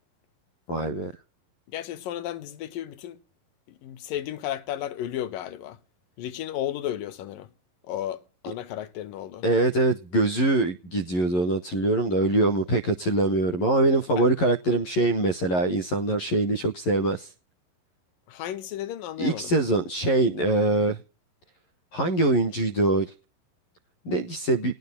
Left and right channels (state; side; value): late; right; 11 ms